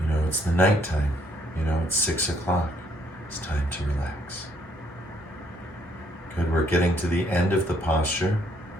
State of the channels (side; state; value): both; normal; correlation 0.68